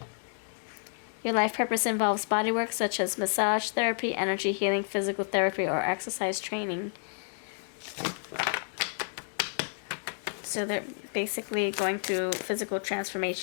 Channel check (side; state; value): right; silent; digital silence